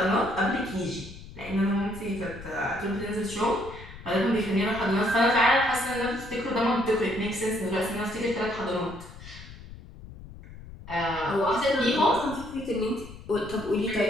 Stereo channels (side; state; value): left; noise; rumble, 15 dB below the sound